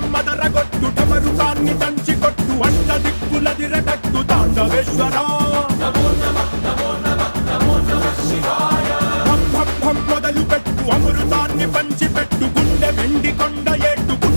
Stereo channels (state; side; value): inverted; both; correlation -1.00